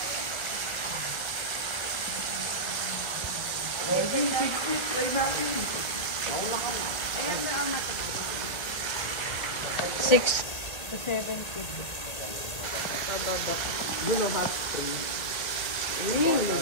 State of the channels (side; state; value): right; late; 2.0 ms